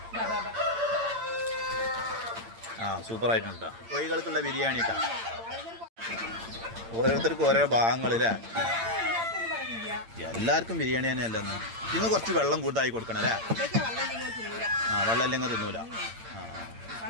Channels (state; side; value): late; left; 8.8 ms